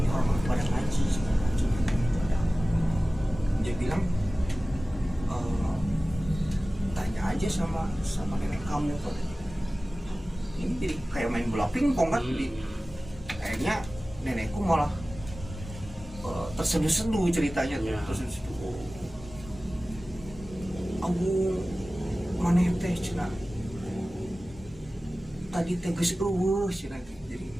orang pada ngaji segala macam, itu ada apa? Dia bilang, tanya aja sama nenek kamu kan. Ini jadi kayak main bola pingpong kan. Akhirnya nenekku malah terseduh-seduh ceritanya tuh. Terseduh-seduh. Abu maneh teh cenah. Tadi teh geus eueuh cenah. Jadi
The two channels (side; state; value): both; normal; correlation 0.96